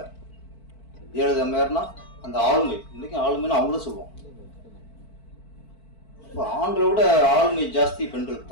ஜெயலலிதா மேயர்னா அந்த ஆளுமை, இன்னைக்கும் ஆளுமைன்னு அவங்களும் சொல்லுவோம். இப்போ ஆண்களை விட ஆளுமை ஜாஸ்தி பெண்களுக்கு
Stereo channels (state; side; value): late; right; 4.5 ms